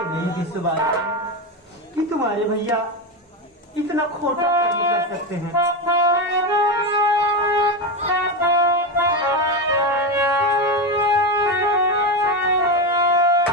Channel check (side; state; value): both; normal; correlation 0.14